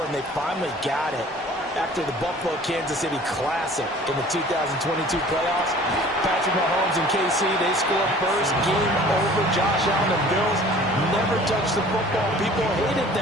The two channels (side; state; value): both; normal; correlation 0.48